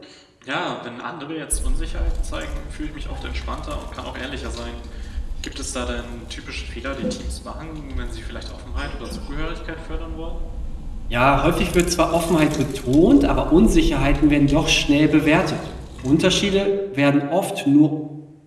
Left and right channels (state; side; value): identical; both; correlation 1.00